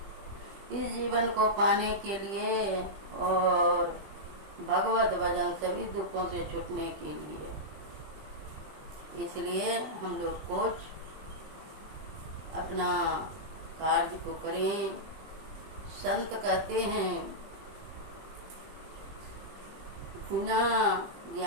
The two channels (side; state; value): left; late; 20 ms